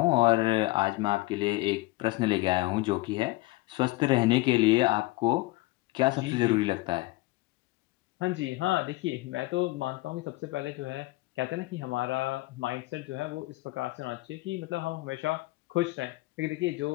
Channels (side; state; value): right; quieter; 20.9 dB